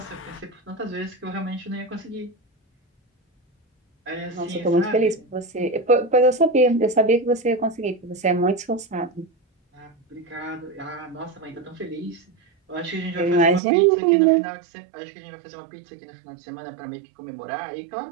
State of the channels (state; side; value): drops out; left; at 13.6 s